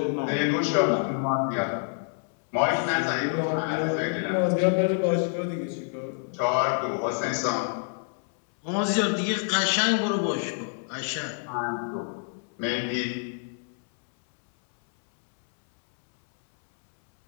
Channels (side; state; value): right; silent; 60 dB below the other